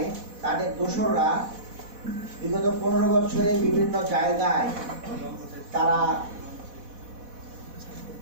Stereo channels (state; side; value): late; left; 4.1 ms